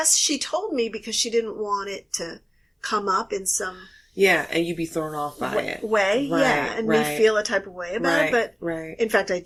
she told me because she didn't want it to come up in some... Yeah, and you'd be thrown off by it. And me feel a type of way about it. But in fact, I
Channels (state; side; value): identical; both; correlation 1.00